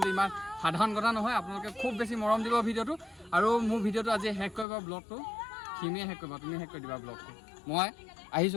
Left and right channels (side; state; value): right; drops out; at 4.7 s